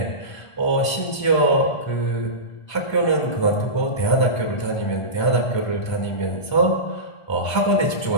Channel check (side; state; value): right; late; 1.4 ms